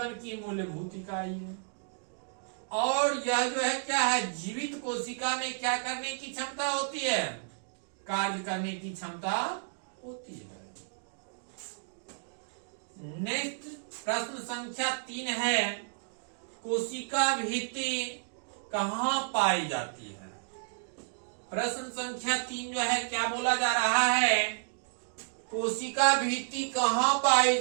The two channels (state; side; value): silent; left; digital silence